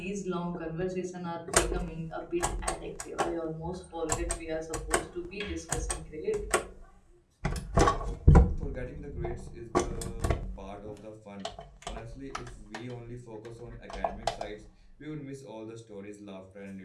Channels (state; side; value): identical; both; correlation 1.00